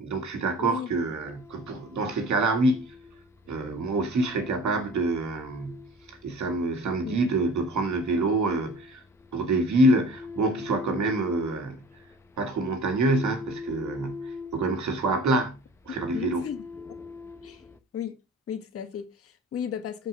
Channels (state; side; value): normal; both; correlation 0.43